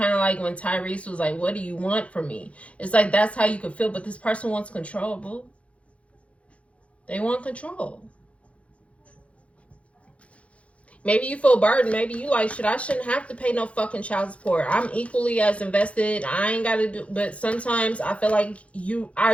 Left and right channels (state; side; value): late; right; 0.063 ms